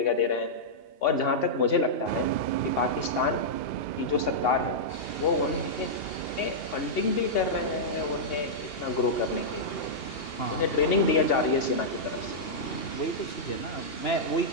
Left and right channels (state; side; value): late; right; 2.8 ms